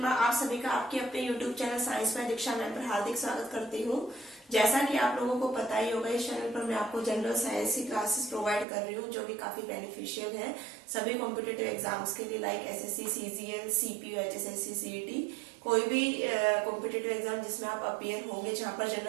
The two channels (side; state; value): left; drops out; at 8.7 s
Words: आप सभी का आपके अपने यूट्यूब चैनल साइंस में दीक्षा मैम पर हार्दिक स्वागत करती हूँ। जैसा कि आप लोगों को पता ही होगा, इस चैनल पर मैं आपको जनरल साइंस की क्लासेस प्रोवाइड कर रही हूँ जो कि काफी बेनिफिशियल है सभी कॉम्पिटेटिव एग्जाम्स के लिए, like SSC, CGL, CPU, HSSC, CET, कोई भी कॉम्पिटेटिव एग्जाम जिसमें आप अपीयर होंगे जहाँ पर